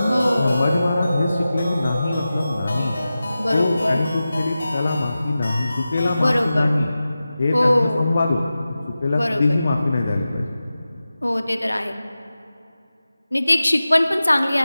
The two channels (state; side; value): inverted; both; correlation -0.94